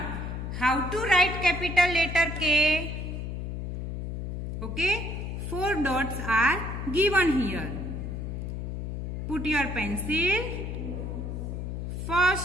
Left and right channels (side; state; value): left; noise; hum, 5 dB below the sound